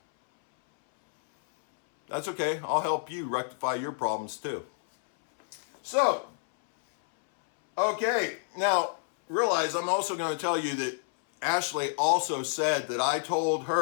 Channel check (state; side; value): silent; right; 59 dB below the other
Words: That's okay. I'll help you rectify your problems too. So, okay. Now, realize I'm also going to tell you that Ashley also said that I told